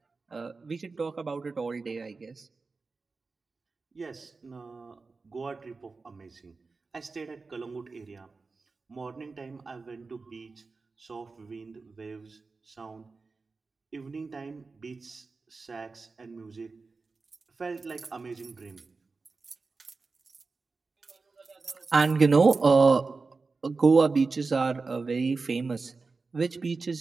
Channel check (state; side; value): quieter; left; 4.1 dB